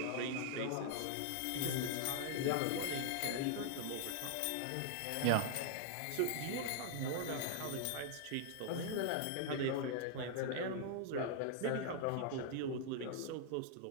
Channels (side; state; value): both; different; correlation 0.00